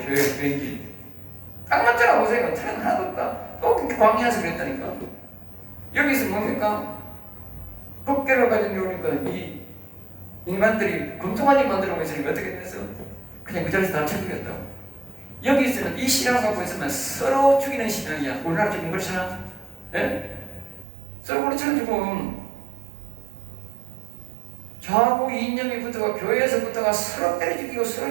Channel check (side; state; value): left; drops out; at 20.9 s